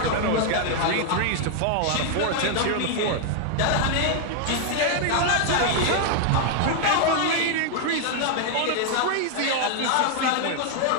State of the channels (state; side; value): different; both; correlation 0.00